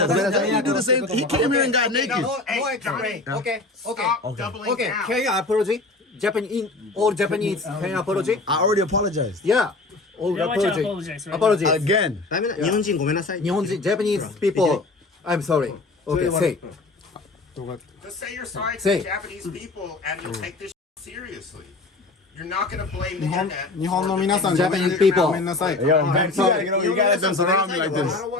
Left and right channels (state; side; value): quieter; right; 3.3 dB